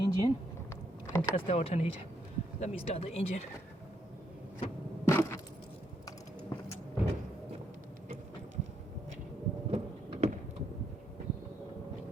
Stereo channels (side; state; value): both; normal; correlation 0.76